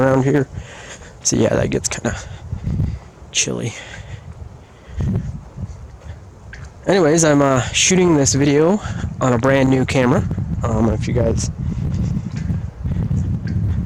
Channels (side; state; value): both; identical; correlation 1.00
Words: here. So yeah, that gets kind of chilly. Anyways, I'm shooting this video on a brand new camera. If you guys